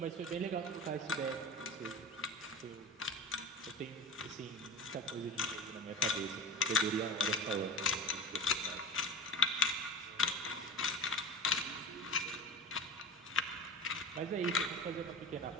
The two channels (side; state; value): both; normal; correlation 0.32